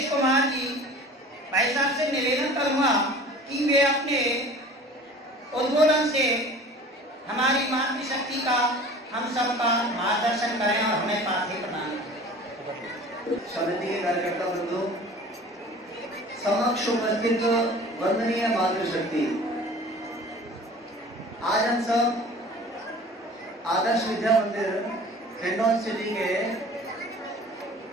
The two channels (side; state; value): both; normal; correlation 0.43